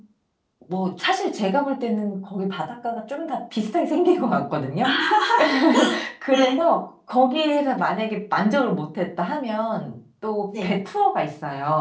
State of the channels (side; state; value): both; identical; correlation 1.00